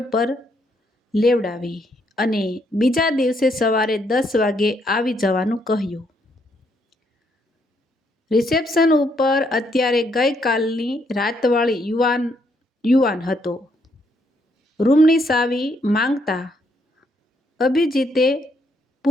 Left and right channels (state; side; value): normal; both; correlation 0.73